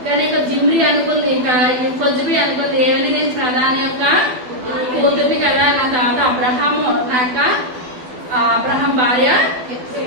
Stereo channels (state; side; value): late; left; 12 ms